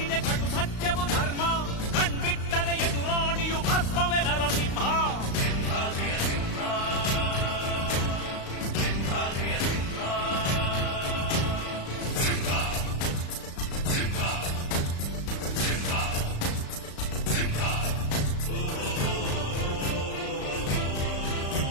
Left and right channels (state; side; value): late; right; 35 ms